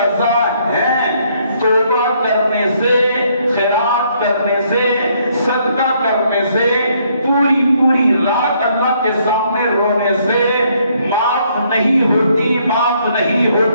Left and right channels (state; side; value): inverted; both; correlation -0.69